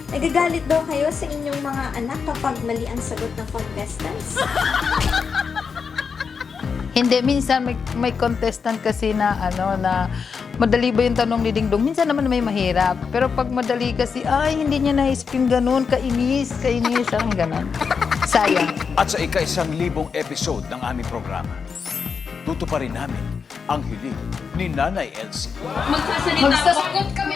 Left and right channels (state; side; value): quieter; right; 5.8 dB